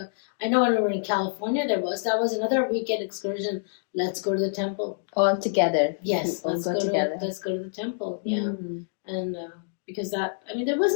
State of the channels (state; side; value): silent; right; digital silence